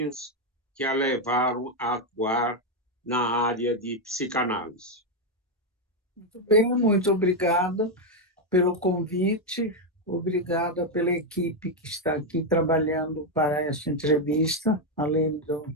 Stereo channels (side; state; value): both; normal; correlation 0.04